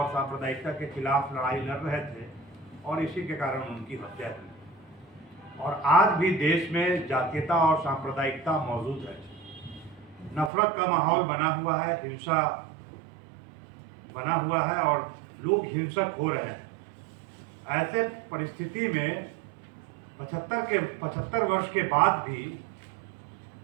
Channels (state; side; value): drops out; left; at 10.5 s